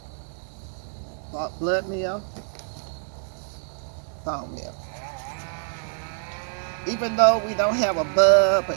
Blood meal, bone meal. Even though we don't have a bud or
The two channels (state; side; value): silent; left; digital silence